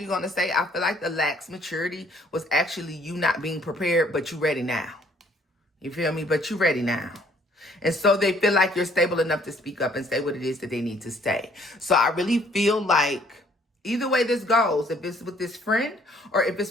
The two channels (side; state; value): both; normal; correlation 0.62